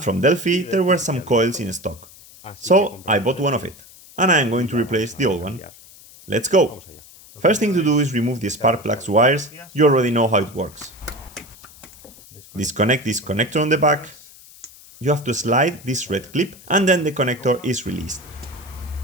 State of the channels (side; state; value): left; noise; hiss, 22 dB below the sound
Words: from Delphi there were some coils in stock. So I bought one of it, and I am going to replace the old one. Let's go! First thing to do is remove the spark plugs wires. You already know how it works. Disconnect this connector on the back. You have to slide this red clip and then the connector is released.